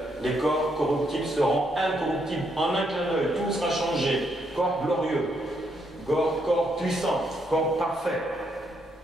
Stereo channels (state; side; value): normal; both; correlation 0.76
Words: Les corps corruptibles seront incorruptibles en un clin d'œil. Tout sera changé. Corps glorieux, corps puissant, corps parfait.